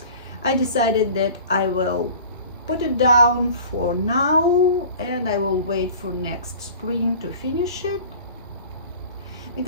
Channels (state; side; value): inverted; both; correlation -0.42